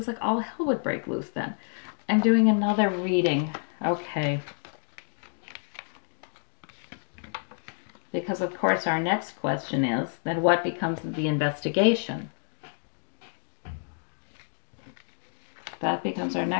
like all hell would break loose then. I'm doing another reading. Okay. Because, of course, our next question is, then what becomes of the investigation? That becomes our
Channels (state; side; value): silent; right; 58 dB below the other